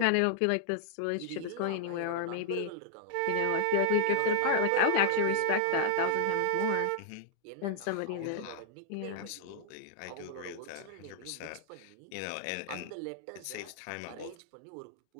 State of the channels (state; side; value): different; both; correlation -0.01